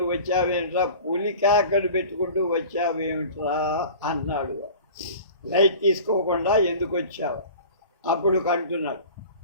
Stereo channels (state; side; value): inverted; both; correlation -0.40